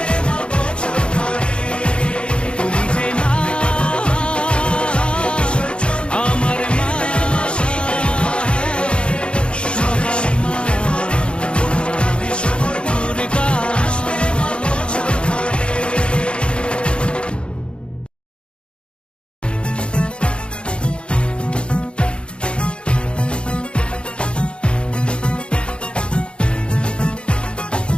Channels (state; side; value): late; right; 0.055 ms